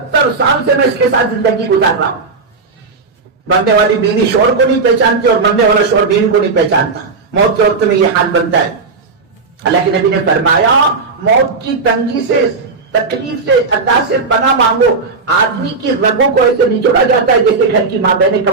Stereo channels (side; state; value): left; quieter; 4.4 dB